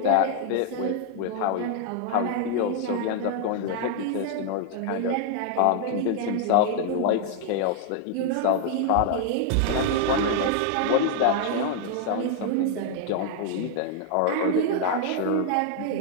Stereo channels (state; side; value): different; both; correlation 0.00